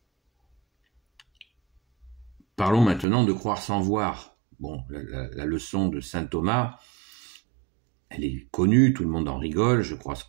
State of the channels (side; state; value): left; drops out; at 3.1 s